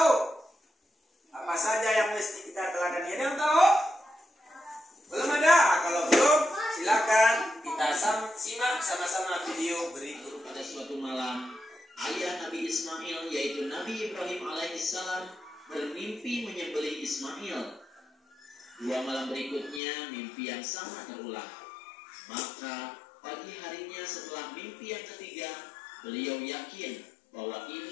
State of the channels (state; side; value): drops out; right; at 19.8 s